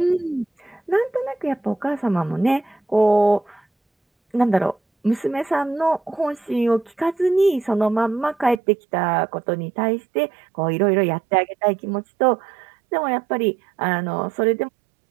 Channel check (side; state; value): left; drops out; at 8.6 s